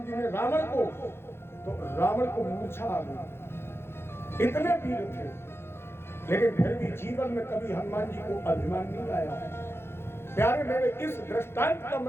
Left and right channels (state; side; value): late; right; 0.12 ms